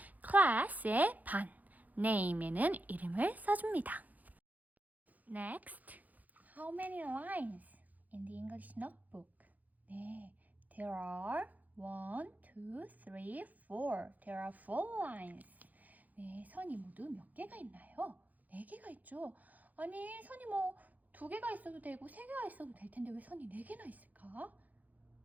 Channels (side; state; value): left; late; 0.080 ms